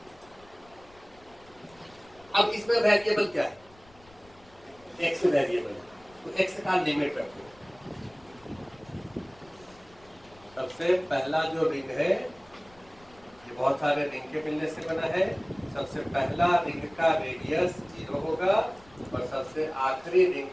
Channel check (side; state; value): left; noise; rumble, 27 dB below the sound